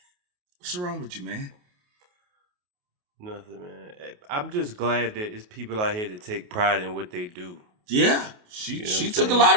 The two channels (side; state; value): left; late; 28 ms